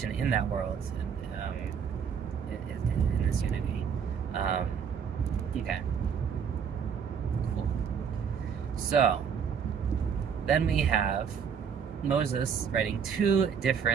in that world, in this unity. Okay. Cool. So, then we have Moses writing 2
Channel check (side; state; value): left; quieter; 7.0 dB